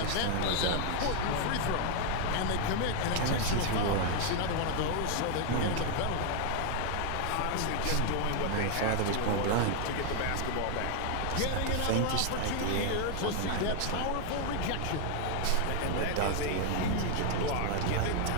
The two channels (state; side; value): different; both; correlation 0.00